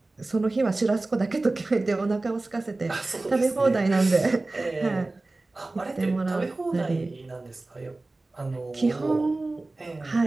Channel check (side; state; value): left; quieter; 3.1 dB